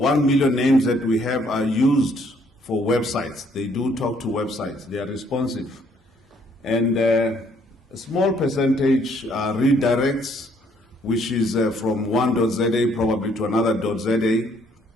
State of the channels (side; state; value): both; normal; correlation 0.66